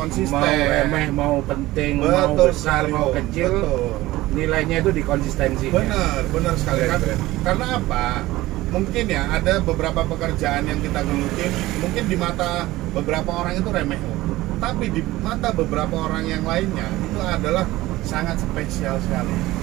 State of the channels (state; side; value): quieter; left; 17.7 dB